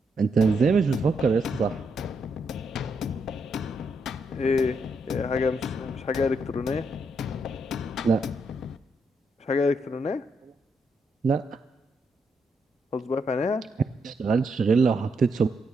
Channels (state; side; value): normal; both; correlation 0.79